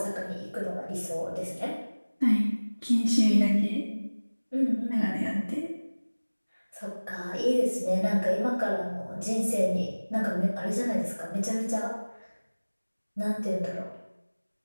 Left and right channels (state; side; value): inverted; both; correlation -1.00